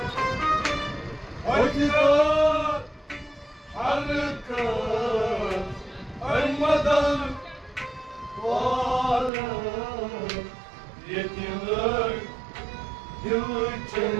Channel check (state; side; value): drops out; left; at 9.3 s